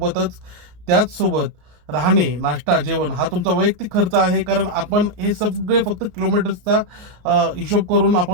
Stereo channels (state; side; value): late; left; 33 ms